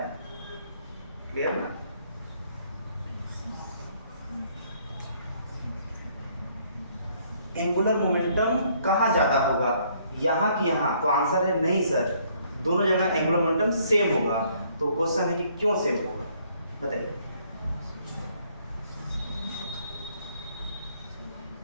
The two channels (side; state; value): both; inverted; correlation -0.66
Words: क्लियर ना? एंगुलर मोमेंटम कहाँ ज्यादा होगा, यहाँ कि यहाँ? तो आंसर है नहीं सर, दोनों जगह एंगुलर मोमेंटम सेम होगा। तो क्वेश्चन है कि क्यों सेम होगा, बताइए।